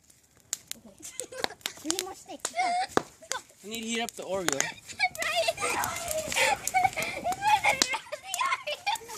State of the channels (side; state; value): both; identical; correlation 1.00